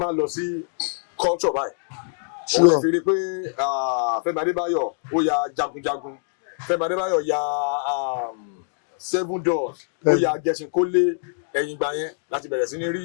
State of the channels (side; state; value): right; silent; 63 dB below the other